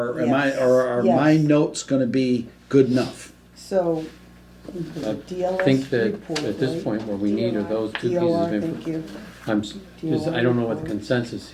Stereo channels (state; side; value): identical; both; correlation 1.00